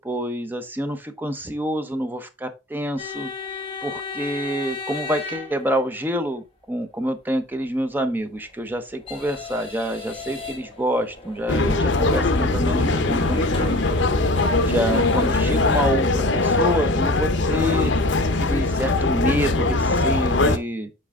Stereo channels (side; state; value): both; normal; correlation 0.40